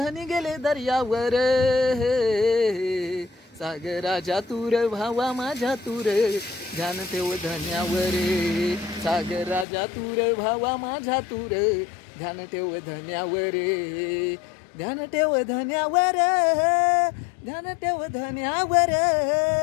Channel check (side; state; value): right; drops out; at 9.7 s